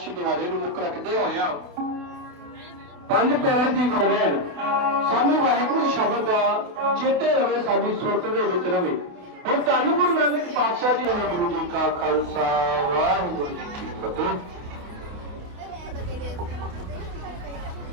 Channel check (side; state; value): left; late; 28 ms